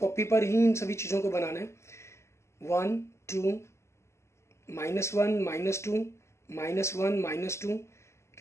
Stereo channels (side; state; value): right; late; 0.13 ms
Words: पर ही इन सभी चीज़ों को बनाना है। 1 2 -1 -2 -1 -2,